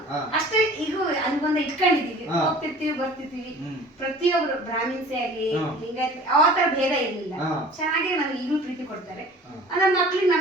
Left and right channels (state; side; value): normal; both; correlation 0.45